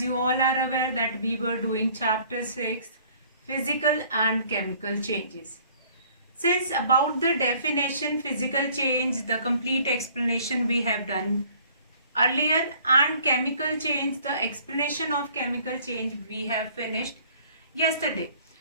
you all are aware that we were doing chapter 6, physical and chemical changes. Since about the definition physical change, the complete explanation we have done earlier, and chemical change, the explanation of chemical change we have finished yesterday.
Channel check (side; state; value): both; inverted; correlation -0.56